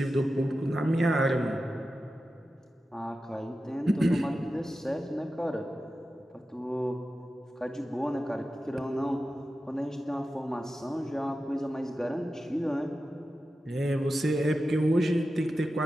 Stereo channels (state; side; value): normal; both; correlation 0.92